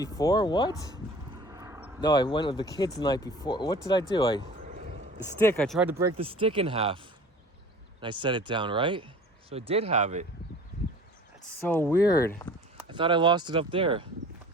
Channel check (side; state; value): both; normal; correlation 0.44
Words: What? No, I went with the kids the night before. What did I do? The stick. I tried to break the stick in half, and I set it down, right? So I did have it. That's so weird. I thought I lost it up there.